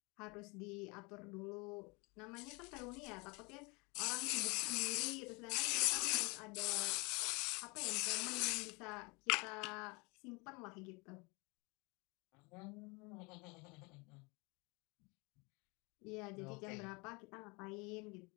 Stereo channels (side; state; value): right; quieter; 28.2 dB